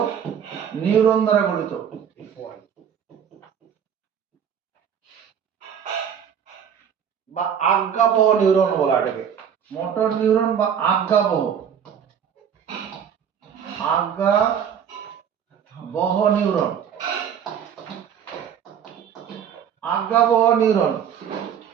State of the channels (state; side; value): quieter; left; 8.3 dB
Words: নিউরন দ্বারা গঠিত। বা আজ্ঞাবহ নিউরন বলা এটাকে। মোটর নিউরন বা আজ্ঞাবহ, আজ্ঞাবহ নিউরন, আজ্ঞাবহ নিউরন।